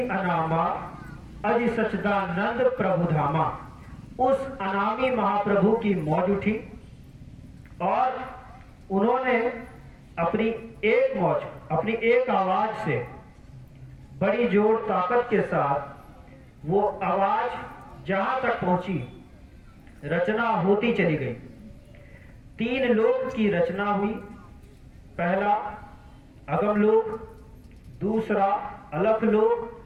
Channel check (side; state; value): both; identical; correlation 1.00